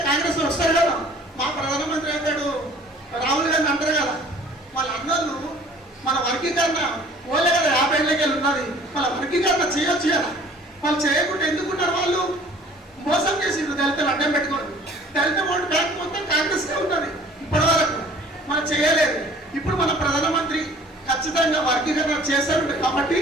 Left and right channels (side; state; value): both; normal; correlation 0.51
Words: కాంగ్రెస్ వస్తారు కదా. మా ప్రధానమంత్రి అంటాడు, రాహుల్ గాంధీ అంటారు కదా, వాళ్ళ అన్నోళ్ళు మన వర్గీకరణ ఓలే కదా 50 ఏళ్ళకి ఉన్నది, వాళ్ళ వర్గీకరణ చేయొచ్చు కదా. వాళ్ళు చేయకుండా ఎందుకున్నారు? వాళ్ళు మోసం చేసిండ్రు దళితులు అడ్డం పెట్టుకోండి. దళిత ఓటు బ్యాంక్ మొత్తం కాంగ్రెస్కే ఉన్నది ఇప్పటి వరకు, మనం చేయలేదు. ఇప్పుడు మన ప్రధానమంత్రి ఖచ్చితంగా వర్గీకరణ చేస్తారు కాబట్టి